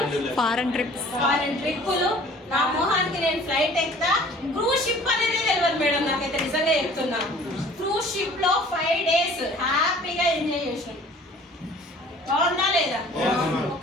ఫారెన్ ట్రిప్పులు. నా మొహానికి నేను ఫ్లైట్ ఎక్కుతా. క్రూజ్ షిప్ అనేది తెలియదు మేడం, నాకైతే నిజంగా చెప్తున్నా. క్రూజ్ షిప్ లో 5 days హ్యాపీగా ఎంజాయ్ చేసాను. బాగుందా లేదా?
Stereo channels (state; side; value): normal; both; correlation 0.50